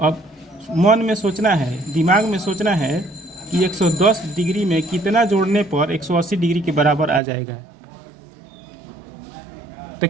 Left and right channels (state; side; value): drops out; left; at 7.2 s